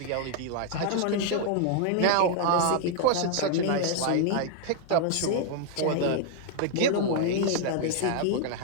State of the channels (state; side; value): different; both; correlation 0.00